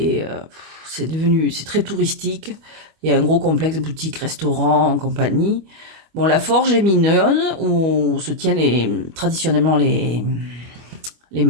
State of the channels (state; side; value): late; left; 25 ms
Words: C'est très touristique. Il y a un gros complexe boutique, restaurant, compagnie. Bon, la forge est mignonne, où se tiennent traditionnellement les